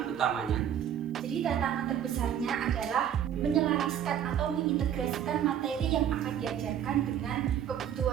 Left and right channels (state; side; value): quieter; left; 9.7 dB